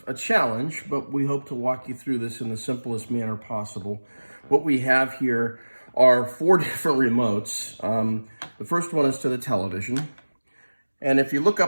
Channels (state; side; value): inverted; both; correlation -1.00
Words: a challenge, but we hope to walk you through this in the simplest manner possible. What we have here are 4 different remotes. The first one is to the television. And if you look